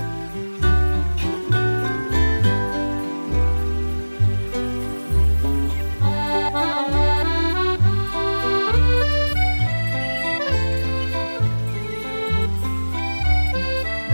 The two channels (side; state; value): both; inverted; correlation -1.00